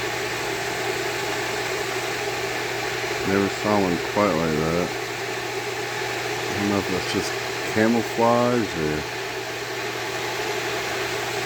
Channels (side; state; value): both; identical; correlation 1.00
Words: Never saw one quite like that. I don't know if that's just camouflage or...